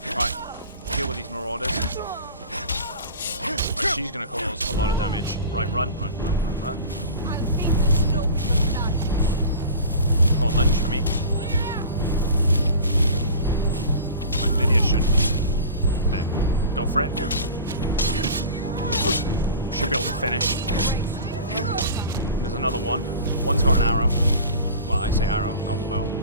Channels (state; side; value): inverted; both; correlation -0.38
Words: She's gonna cause a lot of damage. Right, run. Come on, lunge for me. Right, Lydia should... There. Go for it. Should be able to finish. There's another one. One's got an arrow. Well, I say arrow, got the bow.